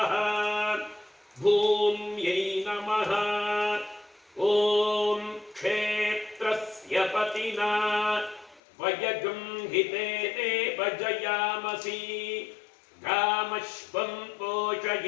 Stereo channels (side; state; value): right; drops out; at 8.6 s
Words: ಭೂಮ್ಯೈ ನಮಃ. ಓಂ ಕ್ಷೇತ್ರಸ್ಯ ಪತಿನಾ ವಯಗಂಹಿತೇನೇವ ಜಯಾಮಸಿ ಗಾಮಶ್ವಂ